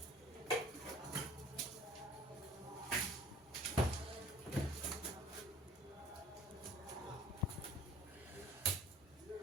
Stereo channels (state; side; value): normal; both; correlation 0.50